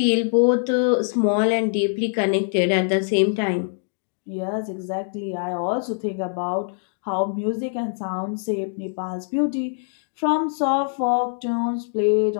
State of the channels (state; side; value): silent; right; digital silence